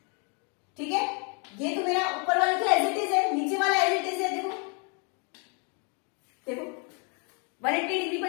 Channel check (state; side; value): quieter; right; 36.6 dB